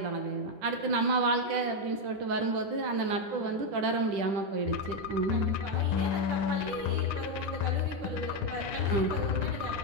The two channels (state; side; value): late; left; 10 ms